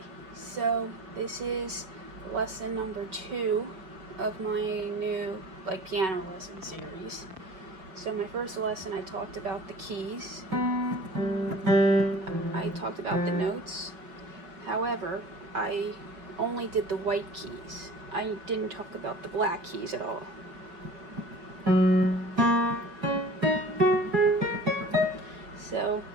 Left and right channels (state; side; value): late; left; 5.5 ms